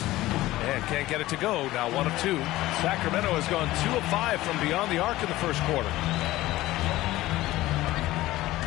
And can't get it to go. Now 1 of 2. Sacramento has gone 2 of 5 from beyond the arc in the first quarter.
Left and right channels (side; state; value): right; quieter; 16.9 dB